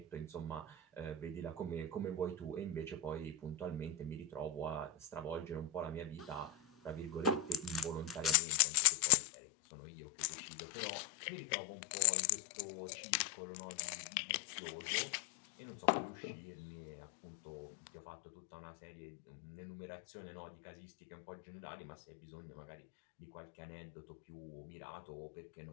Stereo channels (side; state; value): right; drops out; at 8.3 s